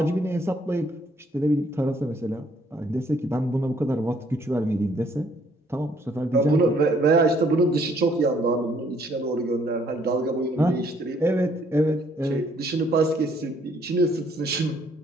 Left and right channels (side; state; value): both; normal; correlation 0.65